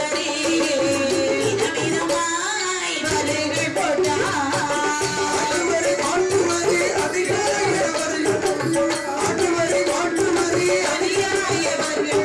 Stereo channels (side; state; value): both; identical; correlation 1.00